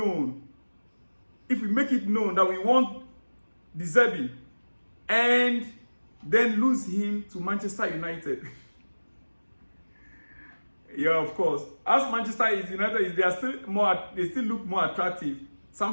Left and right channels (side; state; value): both; inverted; correlation -1.00